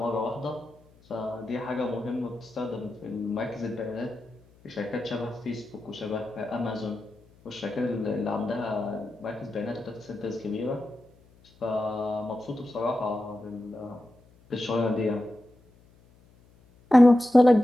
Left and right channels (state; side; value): noise; left; hum, 29 dB below the sound